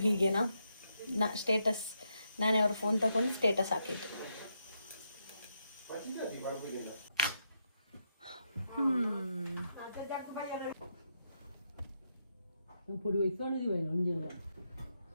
ಹೀಗೇನಾ? ಸ್ಟೇಟಸ್ ನಾನೇ ಅವ್ರ ಫೋನ್ ತಗೊಂಡು ಸ್ಟೇಟಸ್ ಹಾಕಿದ್ದು.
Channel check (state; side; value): inverted; both; correlation -0.81